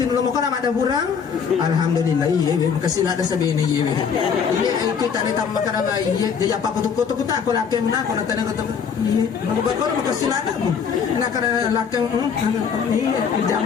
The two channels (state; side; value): quieter; right; 6.7 dB